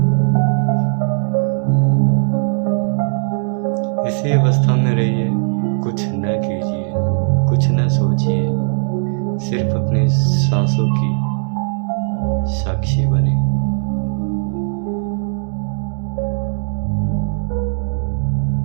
इसी अवस्था में रहिए, कुछ न कीजिए, कुछ न सोचिए, सिर्फ अपनी सांसों की साक्षी बने।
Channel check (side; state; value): left; silent; digital silence